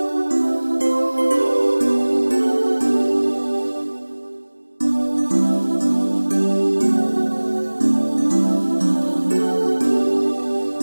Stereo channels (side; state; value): both; inverted; correlation -1.00